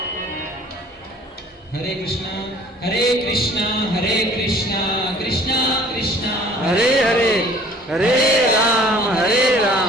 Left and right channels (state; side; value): normal; both; correlation 0.52